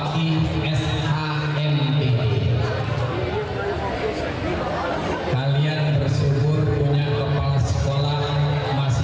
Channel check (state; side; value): identical; both; correlation 1.00